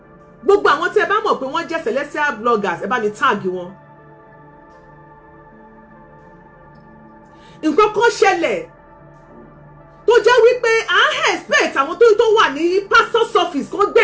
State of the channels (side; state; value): both; identical; correlation 1.00